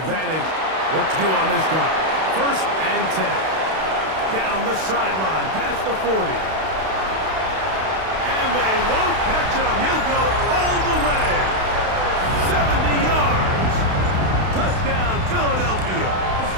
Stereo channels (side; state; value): left; late; 32 ms